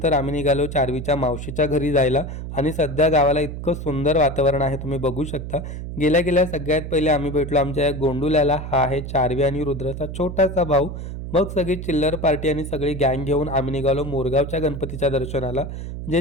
आम्ही निघालो चार्वीच्या मावशीच्या घरी जायला. आणि सध्या गावाला इतकं सुंदर वातावरण आहे, तुम्ही बघू शकता. गेल्या गेल्या सगळ्यात पहिले आम्ही भेटलो आमच्या या गोंडूल्याला. हा आहे चार्वी आणि रुद्राचा छोटासा भाऊ. मग सगळी चिल्लर पार्टी आणि सगळी गँग घेऊन आम्ही निघालो मोरगावच्या गणपतीच्या दर्शनाला, जे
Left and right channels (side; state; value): right; noise; hum, 7 dB below the sound